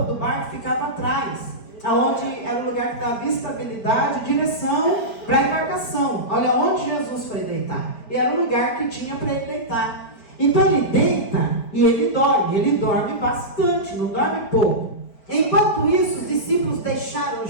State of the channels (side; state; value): right; late; 5.0 ms